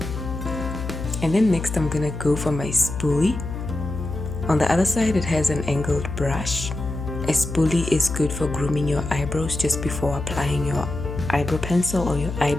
And then next I'm gonna go for my spoolie. On the other side it has an angled brush. A spoolie is good for grooming your eyebrows just before applying your eyebrow pencil or your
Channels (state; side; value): noise; left; hum, 6 dB below the sound